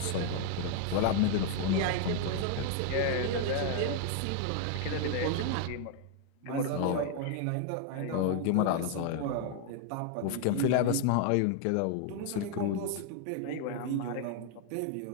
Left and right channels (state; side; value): different; both; correlation 0.00